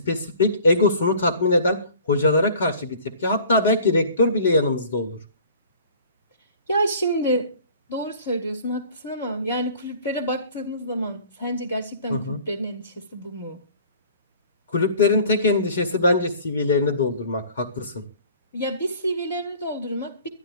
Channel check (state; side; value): inverted; both; correlation -0.48